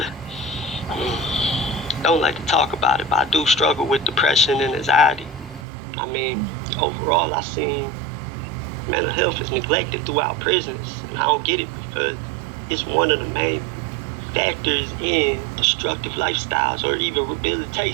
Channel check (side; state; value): left; drops out; at 5.7 s